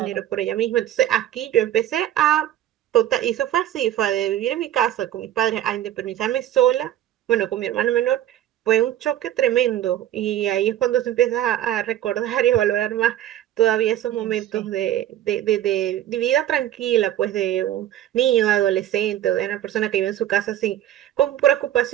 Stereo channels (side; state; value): left; quieter; 12.2 dB